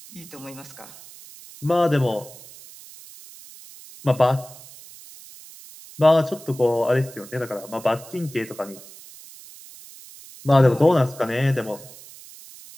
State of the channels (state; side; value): noise; right; hiss, 19 dB below the sound